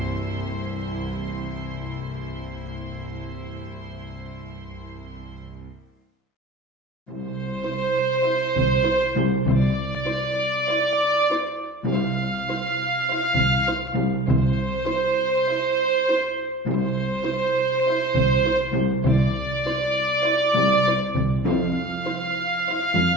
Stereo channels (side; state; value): both; normal; correlation 0.44